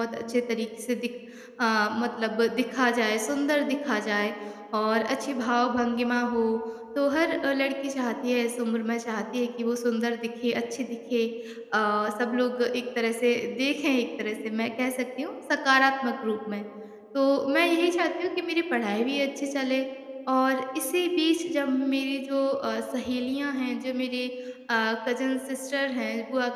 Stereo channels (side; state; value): both; identical; correlation 1.00